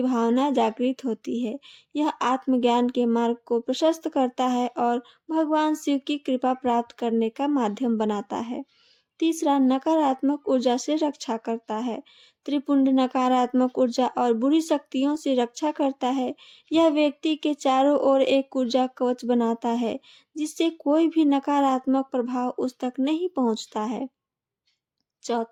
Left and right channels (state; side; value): identical; both; correlation 1.00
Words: भावना जागृत होती है। यह आत्मज्ञान के मार्ग को प्रशस्त करता है और भगवान शिव की कृपा प्राप्त करने का माध्यम बनाता है। तीसरा, नकारात्मक ऊर्जा से रक्षा करता है। त्रिपुंड नकारात्मक ऊर्जा और बुरी शक्तियों से रक्षा करता है। यह व्यक्ति के चारों ओर एक ऊर्जा कवच बनाता है, जिससे कोई भी नकारात्मक प्रभाव उस तक नहीं पहुंचता है।